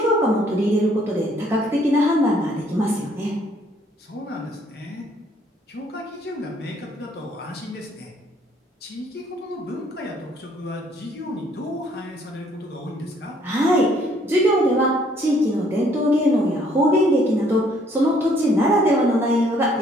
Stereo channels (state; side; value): normal; both; correlation 0.64